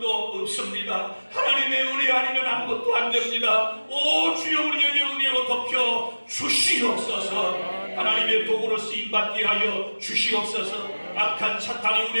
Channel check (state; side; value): inverted; both; correlation -1.00